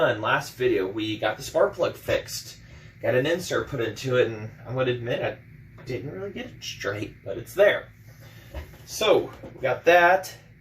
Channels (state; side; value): identical; both; correlation 1.00